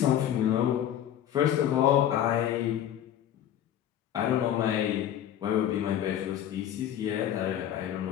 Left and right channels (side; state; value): right; quieter; 10.9 dB